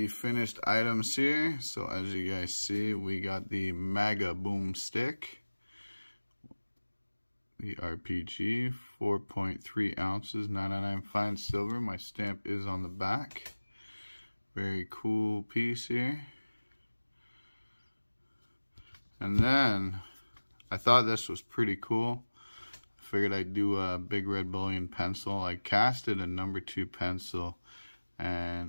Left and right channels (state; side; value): inverted; both; correlation -1.00